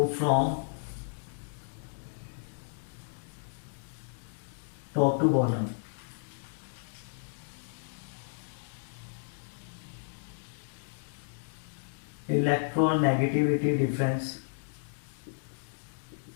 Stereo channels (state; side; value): silent; right; digital silence